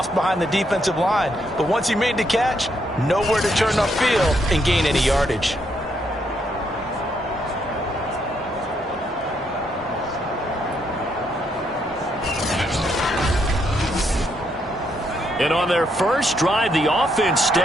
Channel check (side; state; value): both; normal; correlation 0.75